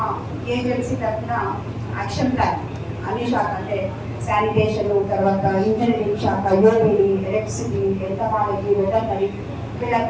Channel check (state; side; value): identical; both; correlation 1.00